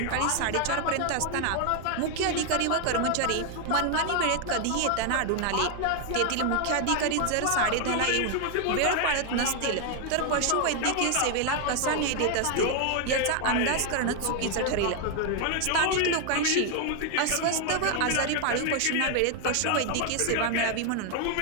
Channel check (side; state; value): both; different; correlation 0.00